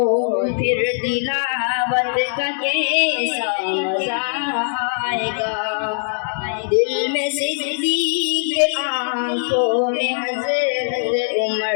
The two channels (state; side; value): silent; right; digital silence